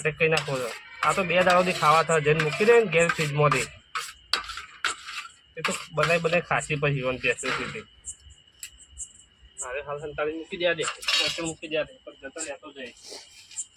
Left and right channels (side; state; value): both; identical; correlation 1.00